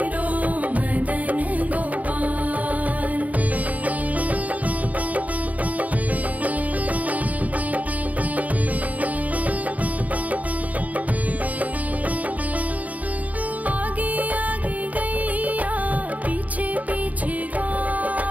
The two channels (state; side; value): late; left; 0.074 ms